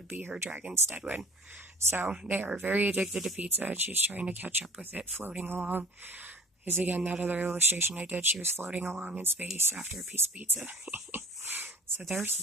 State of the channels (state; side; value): normal; both; correlation 0.44